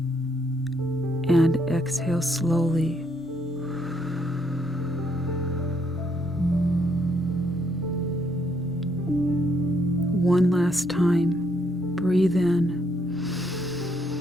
And exhale slowly. One last time. Breathe in.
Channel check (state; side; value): normal; both; correlation 0.72